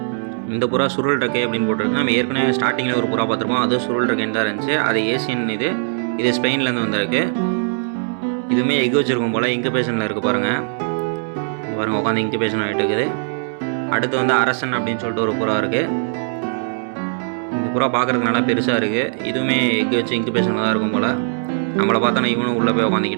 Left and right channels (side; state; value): left; silent; digital silence